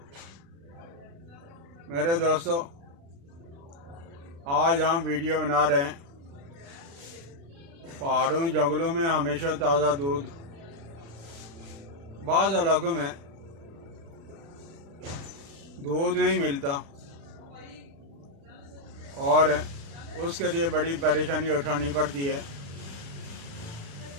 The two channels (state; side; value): late; left; 36 ms